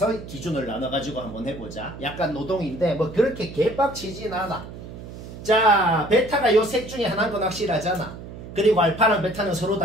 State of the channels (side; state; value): right; noise; hum, 13 dB below the sound